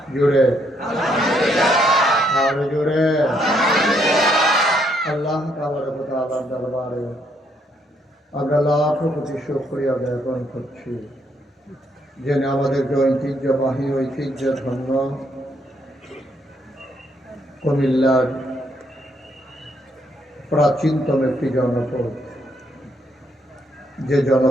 জুড়ে আর জুড়ে আল্লাহ তাআলার দরবারে আমরা লাখ কোটি শুকরিয়া জ্ঞাপন করছি যিনি আমাদেরকে ঐতিহ্যবাহী ঐতিহ্য ধন্য কুমিল্লার প্রাচীনতম একটি জনপদ, যে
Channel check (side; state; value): both; normal; correlation 0.72